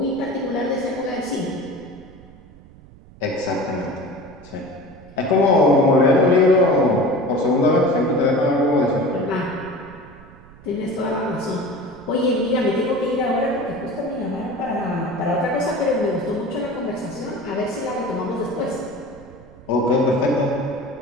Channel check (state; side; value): noise; right; rumble, 22 dB below the sound